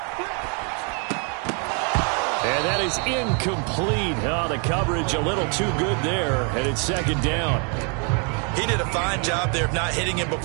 And that is incomplete. Oh, the coverage a little too good there, and it's 2nd down. He did a fine job there of not hitting him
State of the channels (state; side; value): quieter; left; 37.6 dB